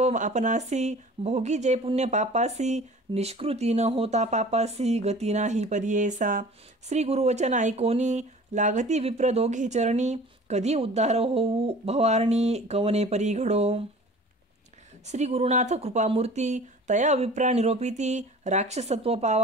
आपणासी भोगी जे पुण्य पापासी. निष्कृती न होता पापासी गती नाही परियेसा. श्री गुरुवचन ऐकोनी लागती विप्र दोघे चरणी. कधी उद्धार होऊ भवारणी कवने परी घडो. श्री गुरुनाथ कृपामूर्ती तया विप्रा निरोपिती. राक्षसत्व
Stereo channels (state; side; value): normal; both; correlation 0.44